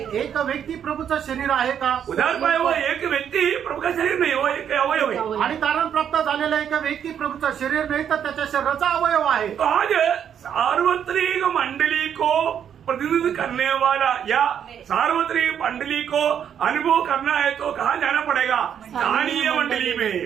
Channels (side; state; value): left; quieter; 8.7 dB